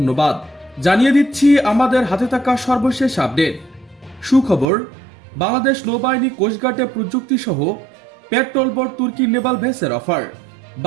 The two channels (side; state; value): left; drops out; at 4.7 s